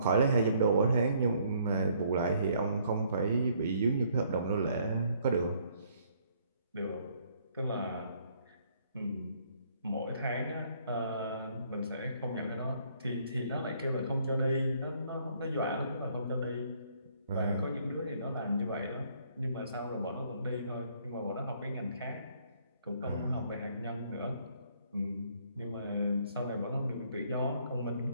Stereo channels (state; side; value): inverted; both; correlation -0.65